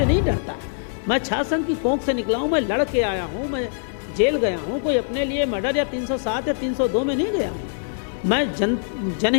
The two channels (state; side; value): silent; right; digital silence